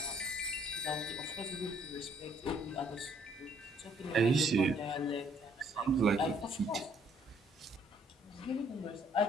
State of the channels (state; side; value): normal; both; correlation 0.65